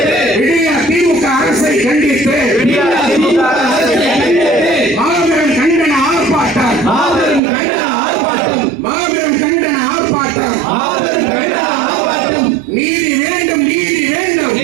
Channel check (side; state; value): left; drops out; at 7.4 s